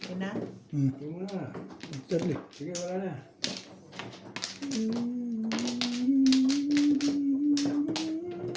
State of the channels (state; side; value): identical; both; correlation 1.00